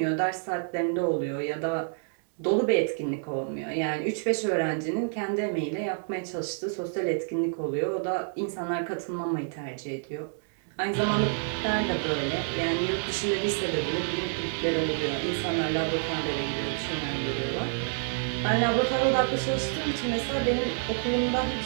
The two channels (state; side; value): silent; left; digital silence